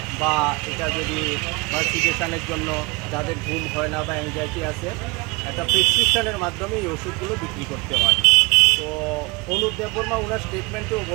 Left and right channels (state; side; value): quieter; left; 27.9 dB